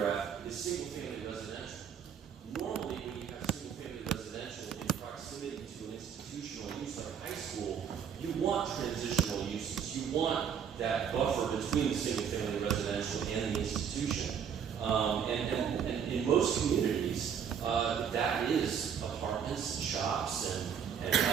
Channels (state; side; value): quieter; left; 7.7 dB